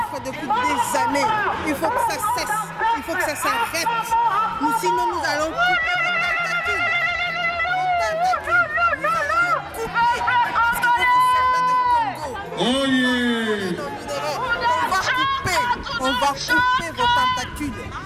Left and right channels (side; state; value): both; identical; correlation 1.00